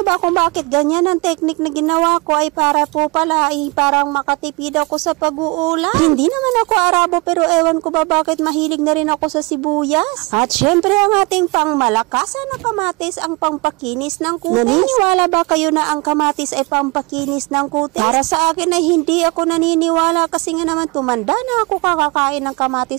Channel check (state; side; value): quieter; left; 27.8 dB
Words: ba kung bakit ganyan ang technique na ginawa ko ay para po pala ay parang makatipid ako sa pag-uulam. Hindi naman ako Arabo pero ewan ko ba bakit mahilig na rin ako sa sibuyas. At syempre ang ating pangmalakasan na kamatis ang pampakinis ng kutis. Naniniwala ba kayo na ang kamatis ay pampakinis ng kutis? Para sa akin ay hindi ako naniniwala kasi nga naman tumanda na ako kakakain ng